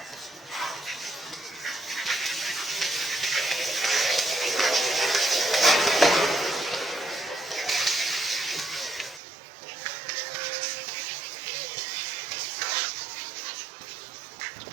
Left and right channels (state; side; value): drops out; left; at 9.2 s